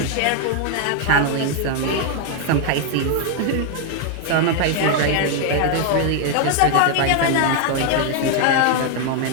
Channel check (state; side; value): different; both; correlation 0.00